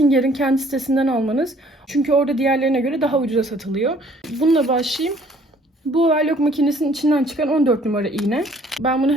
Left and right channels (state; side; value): normal; both; correlation 0.59